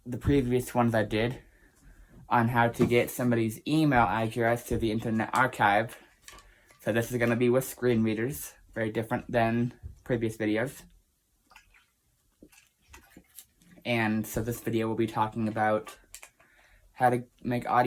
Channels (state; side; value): identical; both; correlation 1.00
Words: previous ones I did on how to get somebody's email address to the Internet Archive. So this is going to be with screen readers, very different than previous videos. And so this video will be talking about how to make